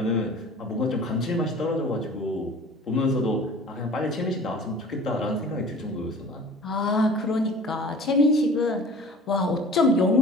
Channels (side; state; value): both; normal; correlation 0.43